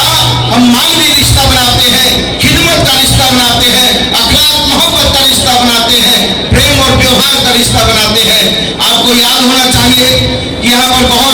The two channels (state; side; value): identical; both; correlation 1.00